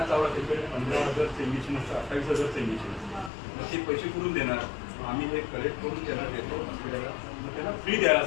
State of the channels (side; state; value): right; drops out; at 3.3 s